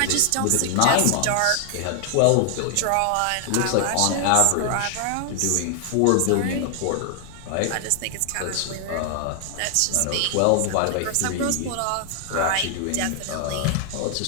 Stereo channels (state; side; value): different; both; correlation 0.00